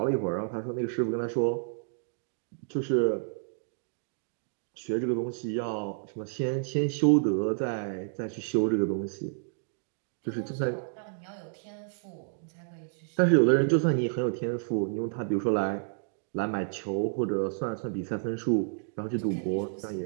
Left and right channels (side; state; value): left; silent; digital silence